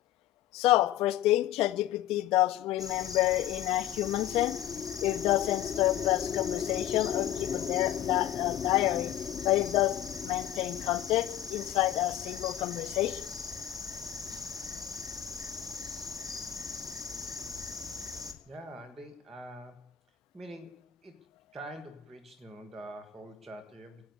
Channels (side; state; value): right; quieter; 12.1 dB